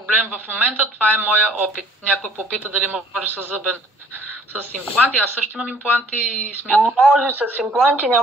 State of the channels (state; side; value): normal; both; correlation 0.55